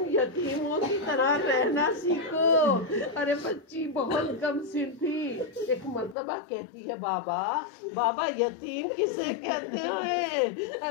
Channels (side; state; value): right; drops out; at 6.2 s